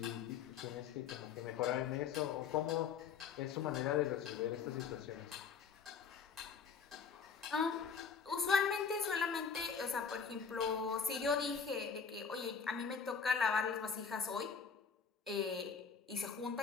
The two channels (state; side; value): quieter; right; 6.2 dB